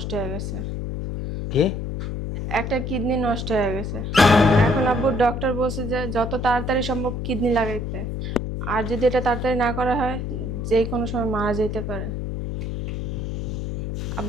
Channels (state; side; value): noise; left; hum, 4 dB below the sound